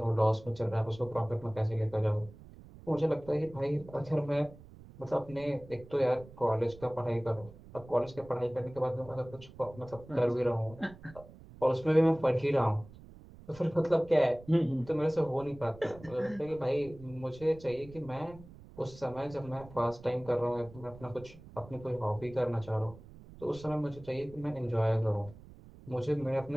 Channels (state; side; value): noise; right; rumble, 19 dB below the sound